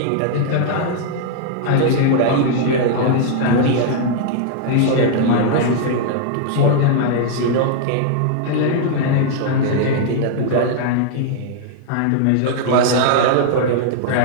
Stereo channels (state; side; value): different; both; correlation -0.01